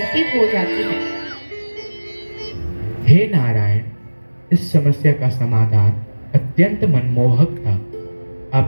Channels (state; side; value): inverted; both; correlation -1.00